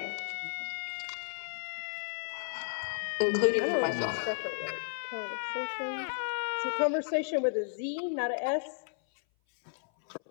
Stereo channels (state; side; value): silent; right; 56 dB below the other